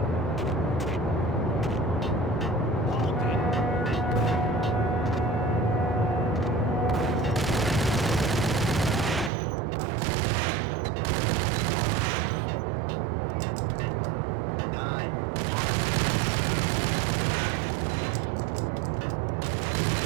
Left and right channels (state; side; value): drops out; left; at 9.3 s